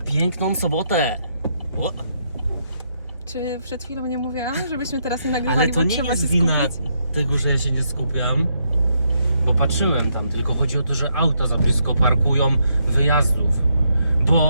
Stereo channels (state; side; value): inverted; both; correlation -0.77